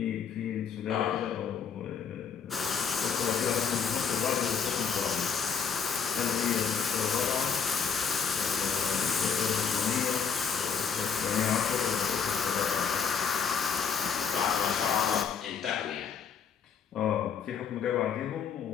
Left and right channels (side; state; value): right; quieter; 6.5 dB